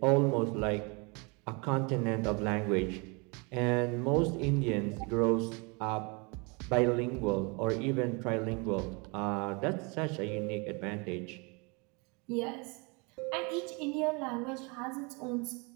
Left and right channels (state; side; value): quieter; left; 30.5 dB